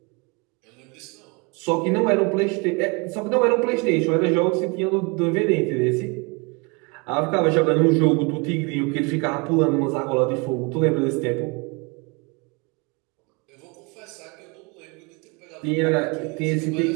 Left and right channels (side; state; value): left; quieter; 29.8 dB